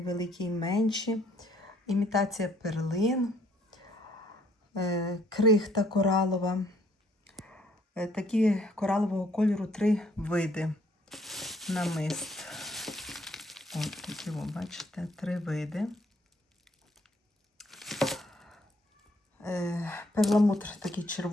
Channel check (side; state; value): both; normal; correlation 0.64